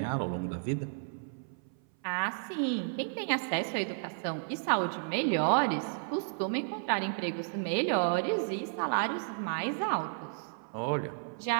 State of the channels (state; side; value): silent; left; 56 dB below the other